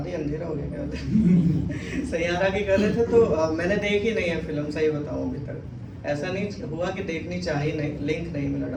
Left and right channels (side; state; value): both; identical; correlation 1.00